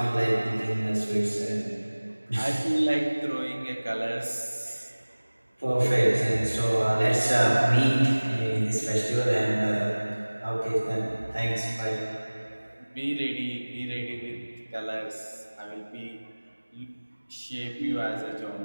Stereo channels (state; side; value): inverted; both; correlation -1.00